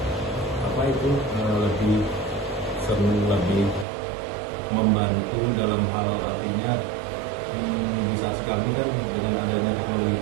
lebih lebih membantu dalam hal artinya bisa sekali kan dengan adanya teknologi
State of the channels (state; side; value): drops out; left; at 3.9 s